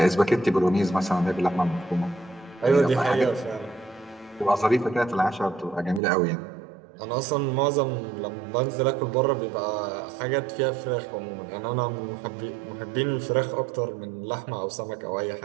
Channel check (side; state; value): left; drops out; at 6.0 s